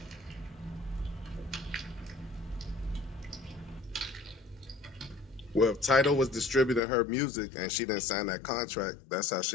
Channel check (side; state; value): right; drops out; at 6.8 s